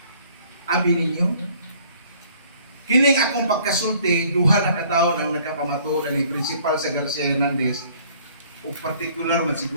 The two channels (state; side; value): inverted; both; correlation -0.57